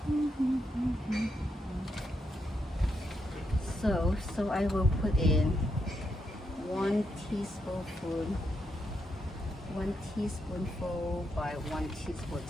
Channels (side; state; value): both; normal; correlation 0.81